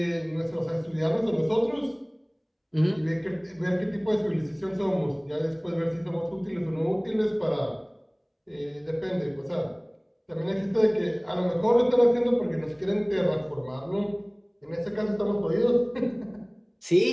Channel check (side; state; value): both; identical; correlation 1.00